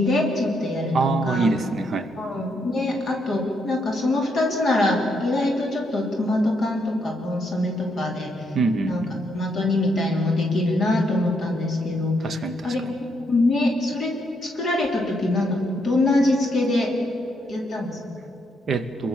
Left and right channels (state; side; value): normal; both; correlation 0.76